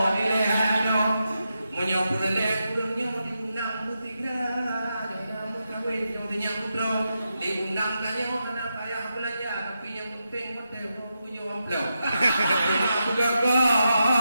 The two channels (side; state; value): both; inverted; correlation -0.87